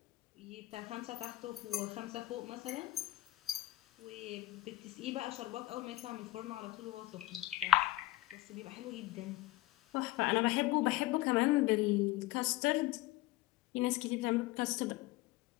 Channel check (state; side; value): quieter; right; 16.9 dB